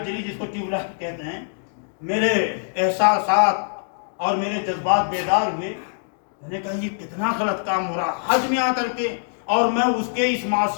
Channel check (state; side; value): silent; right; digital silence